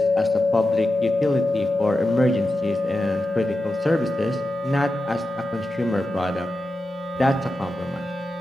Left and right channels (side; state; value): both; normal; correlation 0.91